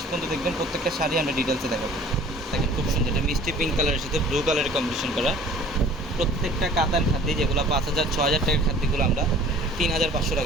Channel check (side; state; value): both; normal; correlation 0.49